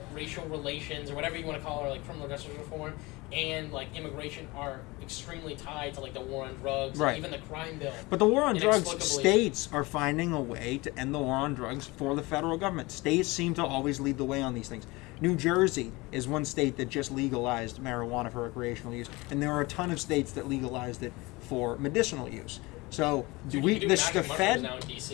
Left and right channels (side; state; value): right; quieter; 23.1 dB